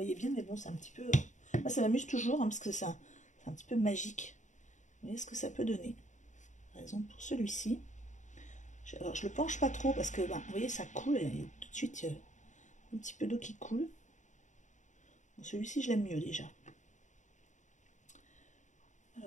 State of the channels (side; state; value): right; late; 0.35 ms